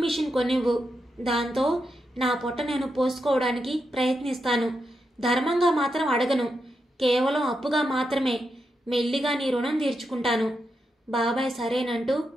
మిషన్ కొనివ్వు. దాంతో నా పొట్ట నేను పోసుకోవడానికి ప్రయత్నిస్తాను. ధర్మంగా మాత్రం అడగను, కేవలం అప్పుగా మాత్రమే. మెల్లిగా నీ రుణం తీర్చుకుంటాను. బాబాయ్ సరేనంటూ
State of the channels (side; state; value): both; normal; correlation 0.85